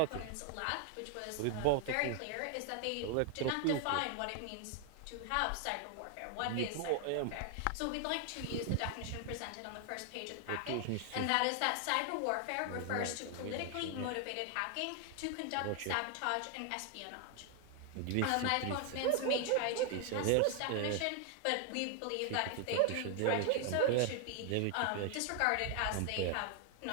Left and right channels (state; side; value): different; both; correlation 0.00